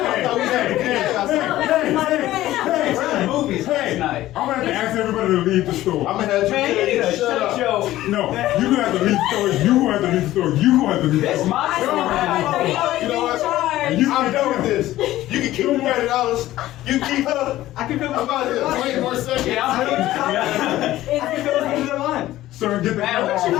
It's my Movies last night. I'm gonna have to ask everybody to leave the store. I'm gonna have Man, you need you to shut shut up. your. No, you're gonna have to leave the store. You gonna have to leave the store. You gonna have to leave the That's store. my story. You know what? And you I'm done with this. You can keep the $30. You can keep her. I can feel I'm out here. 20 more seconds. Yeah, I'm Sir, get the Man, what you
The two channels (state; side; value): quieter; right; 15.1 dB